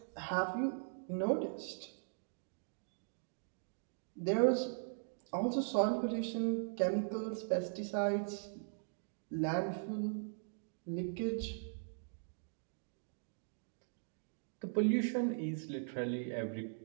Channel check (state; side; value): silent; left; digital silence